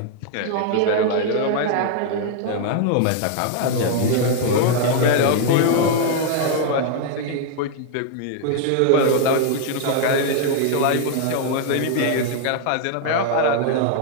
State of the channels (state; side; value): different; both; correlation 0.00